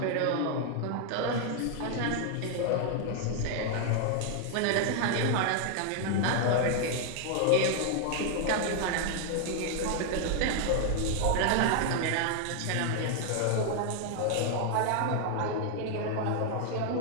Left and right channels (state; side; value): different; both; correlation 0.00